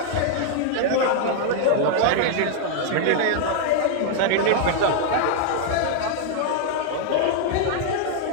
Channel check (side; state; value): both; different; correlation 0.00